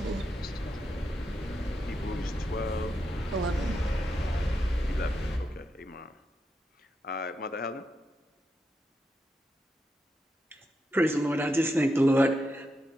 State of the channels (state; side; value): normal; both; correlation 0.85